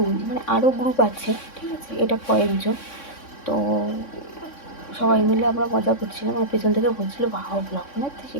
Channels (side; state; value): right; late; 3.6 ms